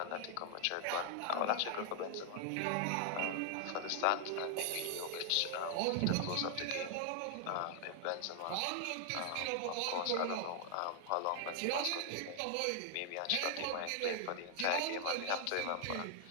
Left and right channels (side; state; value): both; different; correlation 0.00